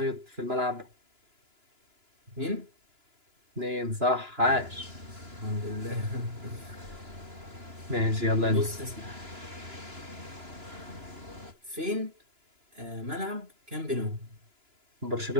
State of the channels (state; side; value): late; left; 2.9 ms